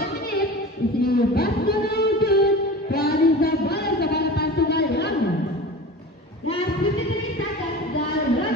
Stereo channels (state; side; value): normal; both; correlation 0.34